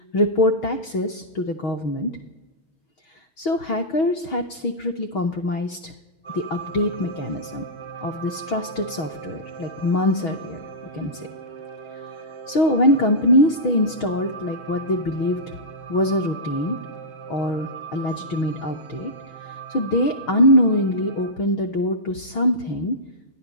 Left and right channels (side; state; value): right; late; 6.3 ms